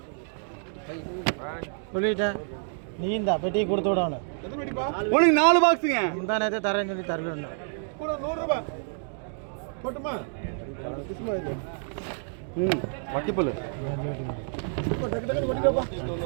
சொல்லிட்டேன். நீ இந்த பெட்டியை கொடுத்து விடணும். எத்தனை வெட்டிப்பா உனக்கு 4 பாக்ஸுங்க. முந்தா நேரத்தை தரேன்னு சொல்லி தரல. கூட 100 ரூபாய் போட்டுமா இஸ்மாயில் வக்கிப்பல். அஞ்சு வெட்டி கொடு. இப்போ டக்கு டக்குன்னு கொட்டிக்கப்பா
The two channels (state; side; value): silent; left; 59 dB below the other